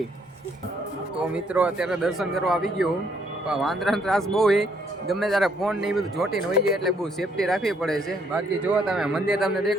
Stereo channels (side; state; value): both; normal; correlation 0.69